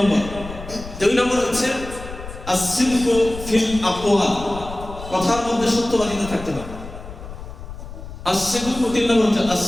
দুই নম্বর হচ্ছে আস-সিদকু ফিল আকওয়াল, কথার মধ্যে সত্যবাদিতা থাকতে হবে। আস-সিদকু, তিন নম্বর হচ্ছে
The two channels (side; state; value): left; noise; rumble, 12 dB below the sound